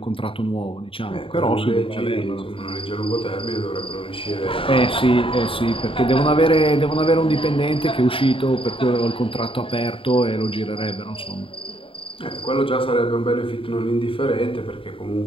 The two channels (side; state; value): right; late; 0.26 ms